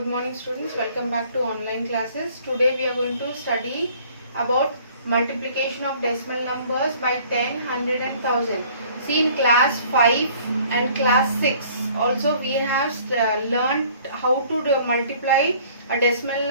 morning students, welcome back to online classes. Today we are going to study about multiplication of decimal numbers by 10, 100 and 1000. See, in class 5 and class 6 also we have learned how to multiply a decimal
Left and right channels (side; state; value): both; inverted; correlation -0.55